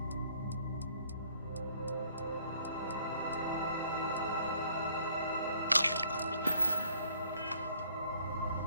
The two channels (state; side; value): inverted; both; correlation -0.60